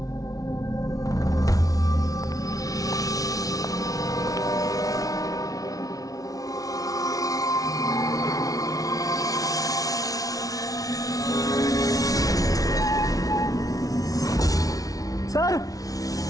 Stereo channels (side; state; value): right; late; 0.18 ms